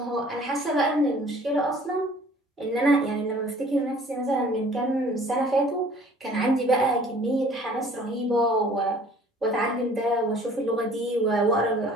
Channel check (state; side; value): normal; both; correlation 0.52